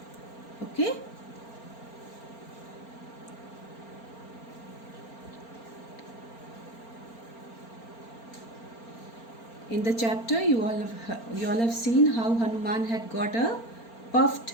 Okay? In the chapter, you all have seen how Hanuman had got a puffed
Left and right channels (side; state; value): right; late; 4.4 ms